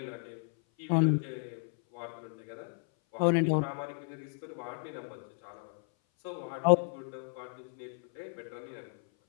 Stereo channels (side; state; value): right; silent; 55 dB below the other